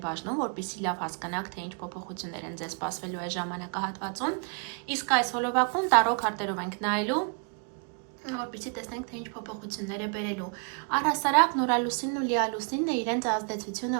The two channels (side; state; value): left; quieter; 38.4 dB